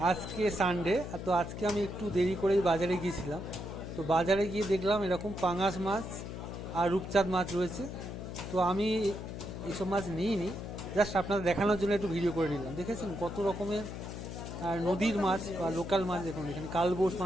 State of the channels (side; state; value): left; noise; hum, 8 dB below the sound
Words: আজকে সানডে, তো আজকে আমি একটু দেরি করেই বাজারে গিয়েছিলাম। তো বাজারে গিয়ে দেখলাম এরকম পাঙাশ মাছ আর রূপচাঁদ মাছ রয়েছে। তো আমি এইসব মাছ নিইনি, জাস্ট আপনাদের দেখানোর জন্য একটু ভিডিও করে নিলাম। দেখেছেন কত রকমের আর নদীর মাছ বা লোকাল মাছ। দেখুন এখানে কালবোস